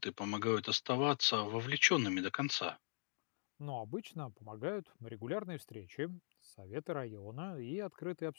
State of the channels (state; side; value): silent; right; digital silence